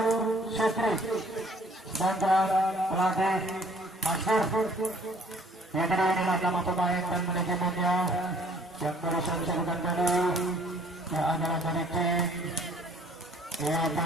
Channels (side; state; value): both; normal; correlation 0.58